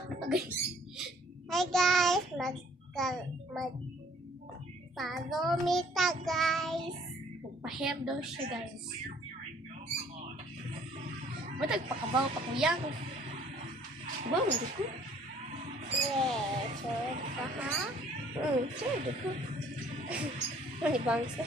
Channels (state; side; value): normal; both; correlation 0.58